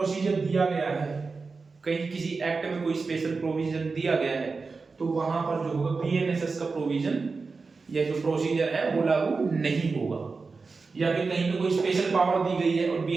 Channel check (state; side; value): quieter; left; 4.3 dB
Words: दिया गया है, कहीं किसी एक्ट में कोई स्पेशल प्रोविजन दिया गया है तो वहां पर जो होगा बीएनएसएस का प्रोविजन या जो प्रोसीजर है वो लागू नहीं होगा। या फिर कहीं पे कोई स्पेशल पावर दी गई है और